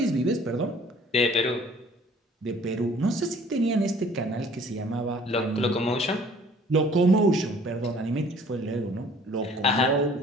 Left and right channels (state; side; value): normal; both; correlation 0.53